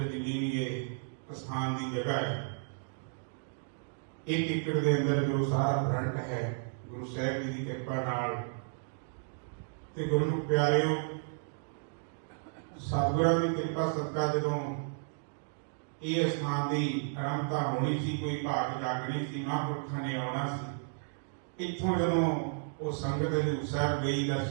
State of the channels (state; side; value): silent; left; digital silence